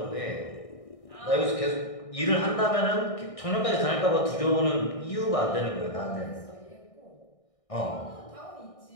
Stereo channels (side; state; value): right; late; 1.6 ms